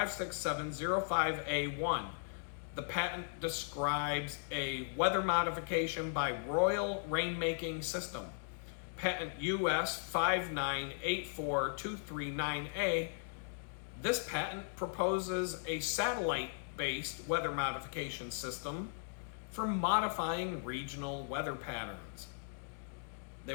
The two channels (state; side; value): silent; right; digital silence